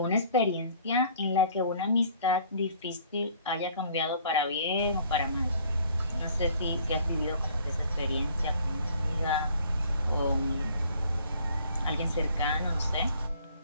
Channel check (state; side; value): inverted; both; correlation -0.56